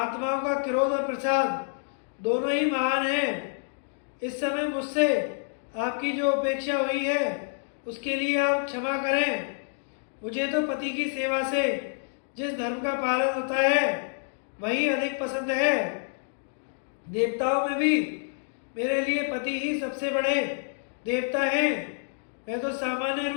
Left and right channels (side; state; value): right; silent; digital silence